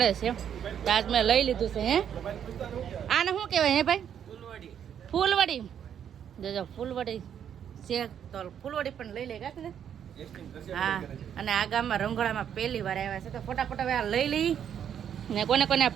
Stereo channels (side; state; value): left; quieter; 8.9 dB